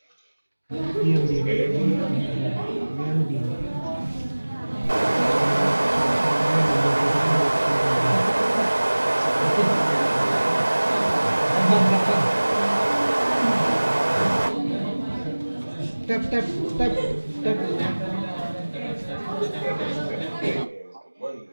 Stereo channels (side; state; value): both; inverted; correlation -1.00